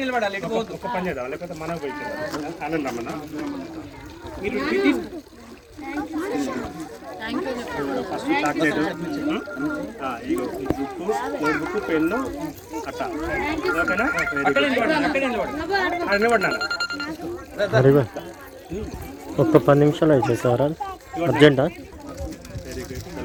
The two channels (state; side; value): identical; both; correlation 1.00